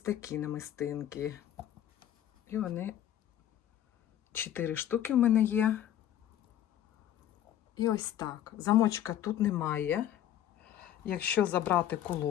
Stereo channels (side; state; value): right; quieter; 11.3 dB